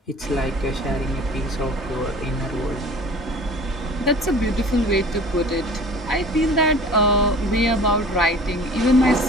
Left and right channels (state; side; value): normal; both; correlation 0.44